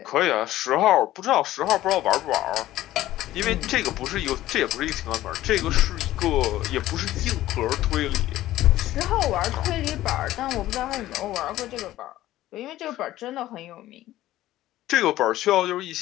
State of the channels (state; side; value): quieter; right; 14.8 dB